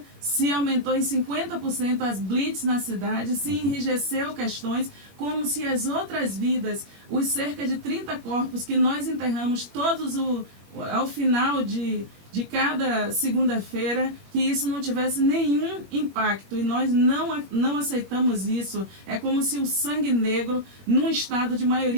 se aumentou em 50% as blitz na cidade, se enrijeceu questões, como se as outras vidas, os cerca de 30 corpos que nós enterramos todos ao final de cada segunda-feira, que isso não tivesse nenhum impacto, e nós não aceitamos isso. É como se o sangue negro, num estado de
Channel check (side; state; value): left; late; 21 ms